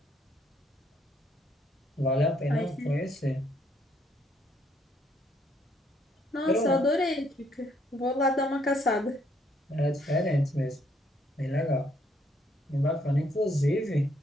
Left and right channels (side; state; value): both; normal; correlation 0.69